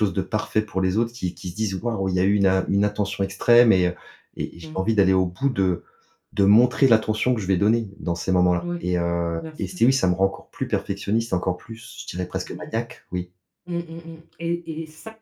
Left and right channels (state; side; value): identical; both; correlation 1.00